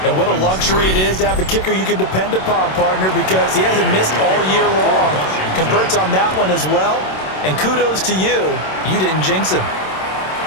And what a luxury it is to have a kicker you can depend upon, partner, because he hasn't missed all year long. Converts on that one as well. And kudos to you. You didn't jinx him.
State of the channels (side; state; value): right; late; 27 ms